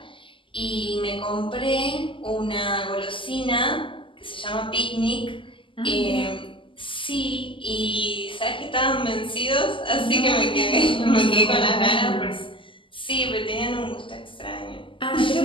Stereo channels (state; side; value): late; right; 0.25 ms